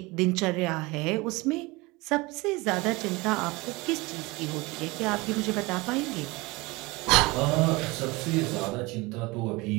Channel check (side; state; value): left; quieter; 23.7 dB